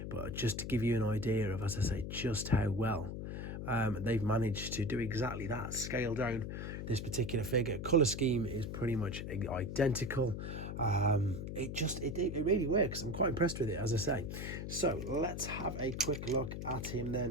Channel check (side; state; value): left; noise; hum, 6 dB below the sound